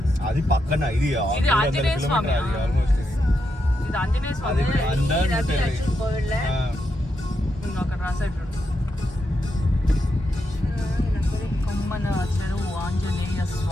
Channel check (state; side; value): normal; both; correlation 0.83